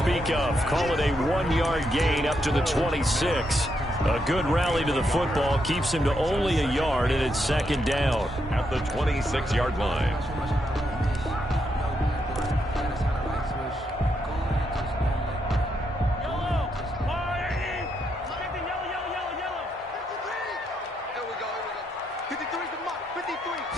of. Call it a 1-yard gain up to the 26. A good rally to the football keeps him to only a yard, and it's 2nd down. At the 26-yard line.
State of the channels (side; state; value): both; normal; correlation 0.80